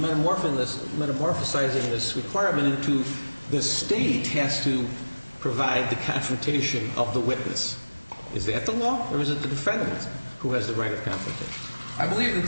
this requirement into the state has to provide the confrontation of the witness. Is that the law, or is it the defendant who has the right of confrontation? I believe that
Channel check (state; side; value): inverted; both; correlation -1.00